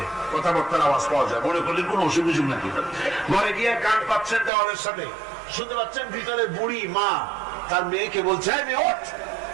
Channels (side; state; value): left; drops out; at 4.5 s